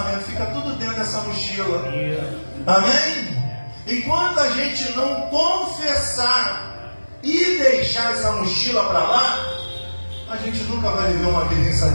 Fica tudo dentro dessa mochila. Amém? Enquanto a gente não confessar e deixar essa mochila para lá, a gente nunca vai viver uma vida em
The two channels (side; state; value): both; inverted; correlation -1.00